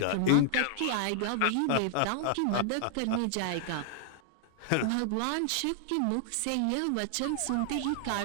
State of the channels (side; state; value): both; different; correlation -0.01